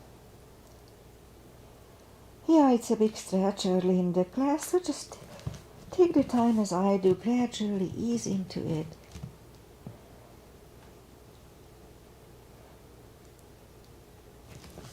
Yeah, it's a big stretch early in the class, so just take the time as I do, gradually ease into it.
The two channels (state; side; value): identical; both; correlation 1.00